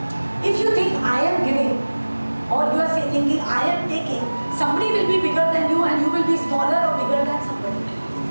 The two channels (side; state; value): both; inverted; correlation -1.00